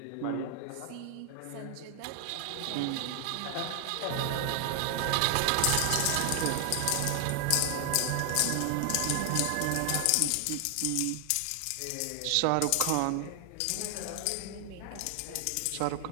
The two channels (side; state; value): both; different; correlation 0.00